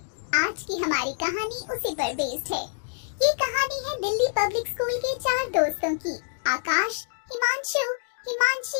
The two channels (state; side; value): silent; right; digital silence